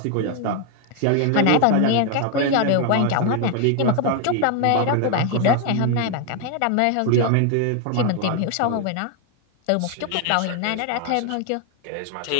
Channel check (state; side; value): different; both; correlation 0.00